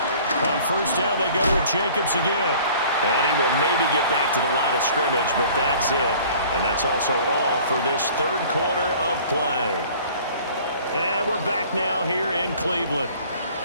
On 1st down, they go with Jacobs again. And he will maybe get back to the line of scrimmage, but that's it. And that's also all for this 3rd quarter of play. And we're back now here in Cleveland.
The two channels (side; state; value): both; inverted; correlation -0.50